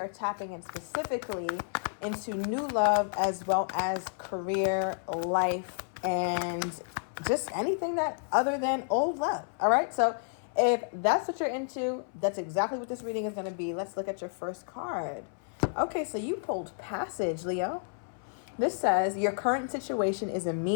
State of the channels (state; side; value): silent; right; 57 dB below the other